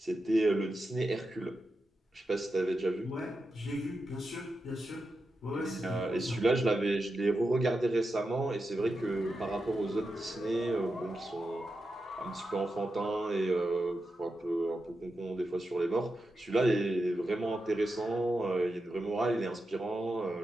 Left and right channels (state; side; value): normal; both; correlation 0.89